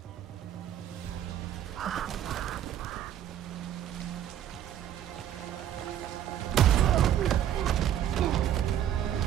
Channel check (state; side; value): quieter; left; 10.8 dB